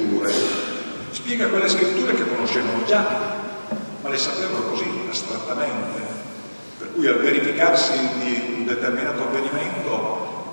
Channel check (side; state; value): both; inverted; correlation -1.00